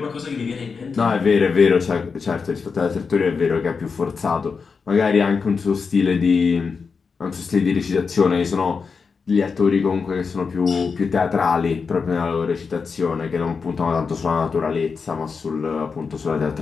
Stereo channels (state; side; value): quieter; right; 5.2 dB